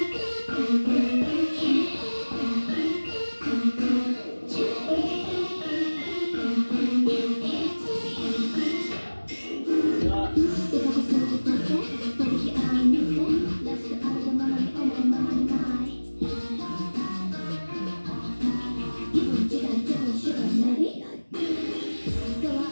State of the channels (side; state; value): both; inverted; correlation -1.00